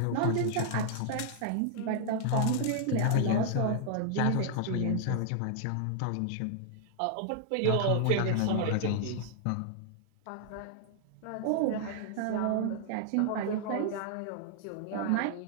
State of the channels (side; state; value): both; different; correlation -0.01